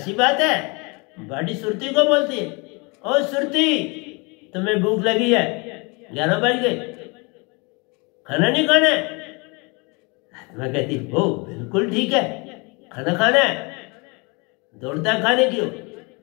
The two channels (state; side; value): quieter; right; 29.2 dB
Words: बात है। बॉडी सुरती को बोलती है ओ सुरती तुम्हें भूख लगी है, 11 बज गए, खाना नहीं खाना है? आत्मा कहती ओ बिल्कुल ठीक है, खाना खाना है, दौड़ता है खाने की।